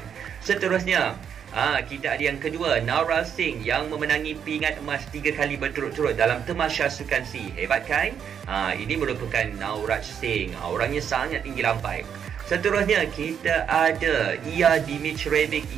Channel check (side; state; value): left; quieter; 8.0 dB